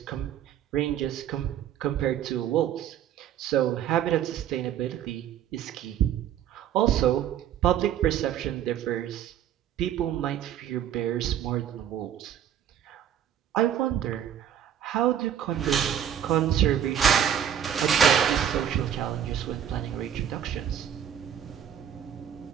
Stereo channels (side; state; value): left; quieter; 9.6 dB